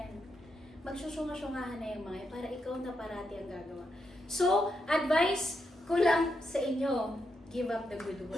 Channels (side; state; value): both; normal; correlation 0.83